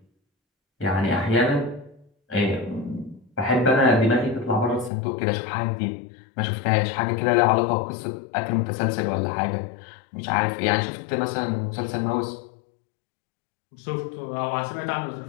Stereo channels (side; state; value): right; drops out; at 4.9 s